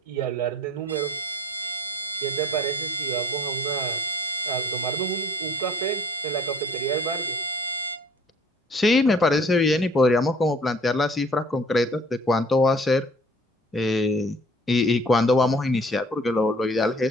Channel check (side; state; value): both; normal; correlation 0.52